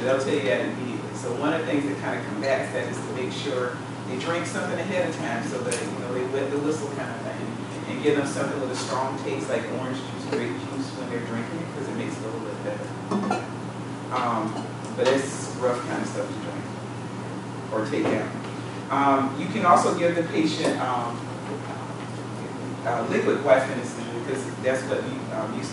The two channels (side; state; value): both; identical; correlation 1.00